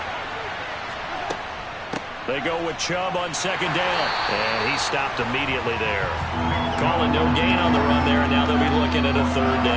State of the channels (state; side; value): identical; both; correlation 1.00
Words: They go with Chubb on second down, and he stopped immediately there. Calling no gain on the run there, and now they'll be looking at a third